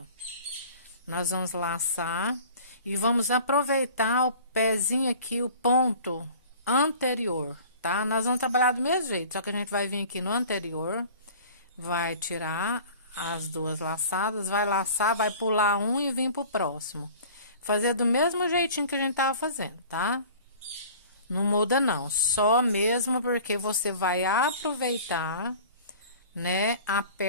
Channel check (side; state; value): both; inverted; correlation -0.45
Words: Nós vamos laçar e vamos aproveitar o pezinho aqui, o ponto anterior, tá? Nós vamos trabalhar do mesmo jeito, só que a gente vai vir aqui no anterior, vai tirar as duas laçadas, vai laçar, vai pular um e vir pro próximo. Fazer do mesmo jeitinho que a gente tava fazendo, tá? Não muda não, só mesmo porque você vai aproveitar, né, a